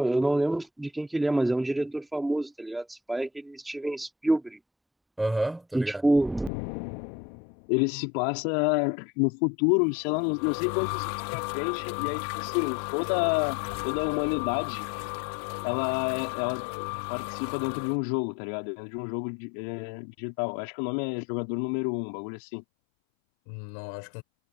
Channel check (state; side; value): drops out; right; at 6.5 s